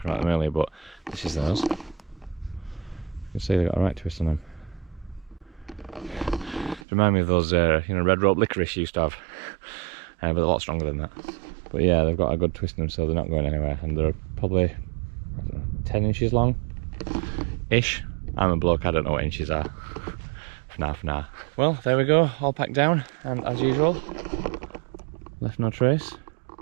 about them earlier, but this is those. You can see they've got a right twist on them. Remind me of those red rope licorice used to have, but a lot stronger than that. But yeah, they've got a good twist in them, so they're not going anywhere, and they're probably, I don't know, 10 inches long ish. I'm a bloke, I don't know what inches are. For now. Well, there we go, all packed down, and as usual, left no trace,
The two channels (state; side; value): drops out; left; at 6.9 s